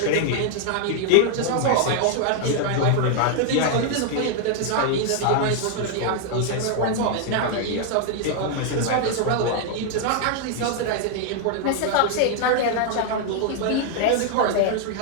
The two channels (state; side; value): different; both; correlation 0.00